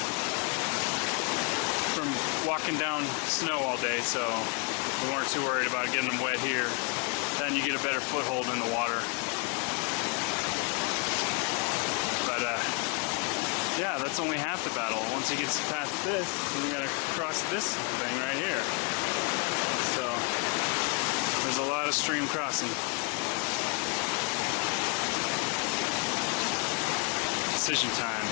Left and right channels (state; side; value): quieter; right; 31.3 dB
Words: walking down snow all day, so we weren't too worried about getting them wet here. Then you get a better foothold in the water. But yeah, that's only half the battle. Once he gets past this, then we gotta cross this thing right here. So there's a lot of stream crossing. Decision